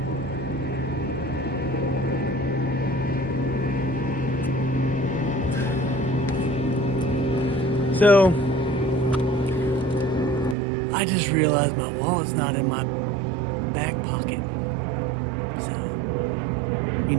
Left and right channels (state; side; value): drops out; left; at 10.6 s